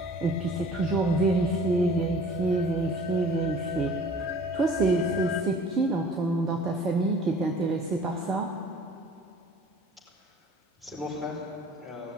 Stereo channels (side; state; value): both; normal; correlation 0.49